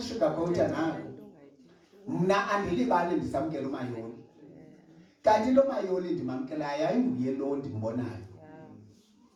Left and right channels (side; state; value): both; identical; correlation 1.00